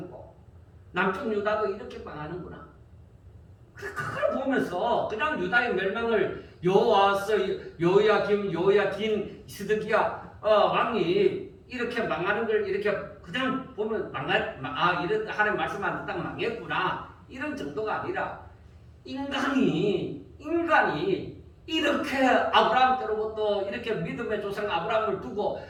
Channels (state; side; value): identical; both; correlation 1.00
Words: 남쪽 유다도 이렇게 망하는구나. 그걸 보면서 그냥 유다의 멸망을 여호와서 요야긴 시드기야 왕이 이렇게 망하는 걸 이렇게 그냥 보면 이런 하나님 말씀 안 듣다가 망했구나 이런 정도가 아니라 인간이 이렇게 아브라함 때로부터 이렇게 믿음의 조상 아브라함을 두고